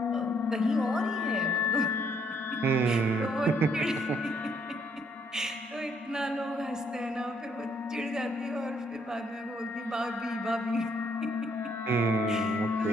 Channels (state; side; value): normal; both; correlation 0.69